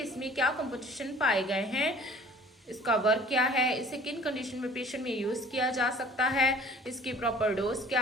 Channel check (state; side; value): normal; both; correlation 0.50